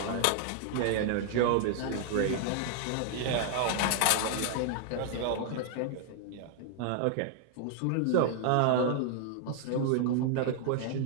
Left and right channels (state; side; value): different; both; correlation 0.00